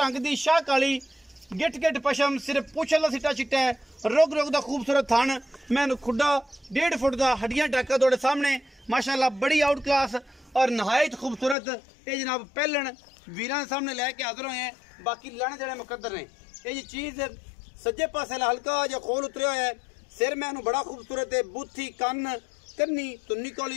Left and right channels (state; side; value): drops out; right; at 11.6 s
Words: दी शाह काली गिट गिट पशम सिर्फ पूछल दा सिट्टा चिट्टा है। रोग रोग दा खूबसूरत थान मैं खुड्डा 1.5 फुट दा हड्डियां टाका तोड़े सामने माशाल्लाह बड़ी आउट क्लास और नहायत खूबसूरत ये जनाब पहलन वीरां दे सामने लैके हाजिर होए हैं। बाकी लैने देने मुकद्दर ने। ये चीज सज्जे पासे हल्का जो खोल उतरिया है। सिर मैनू बड़ा खूबसूरत है। बूथी कन्न कन्नी तुन्नी